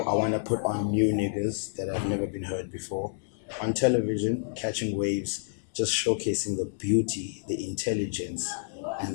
I want to put on new niggas that have never been heard before. On television, catching waves, just showcasing the beauty, the intelligence,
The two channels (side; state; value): right; silent; digital silence